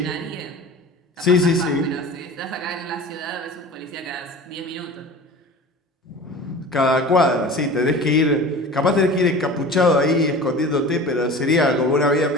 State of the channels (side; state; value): both; normal; correlation 0.38